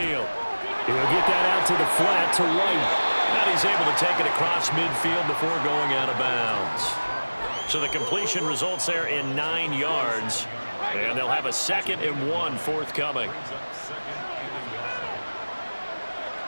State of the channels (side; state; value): both; inverted; correlation -1.00